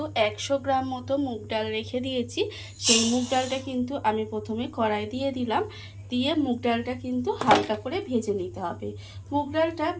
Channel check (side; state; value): both; identical; correlation 1.00